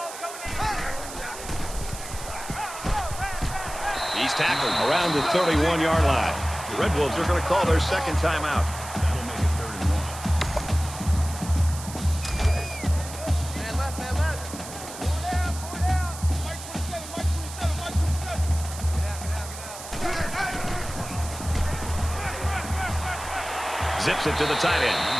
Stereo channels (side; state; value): right; noise; hiss, 12 dB below the sound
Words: going in. He's tackled around the 31-yard line. The Red Wolves are going to call their second timeout. That'll make it third and 1. Man left. Four down. Mike 27. Get out. Zips it to the tight end,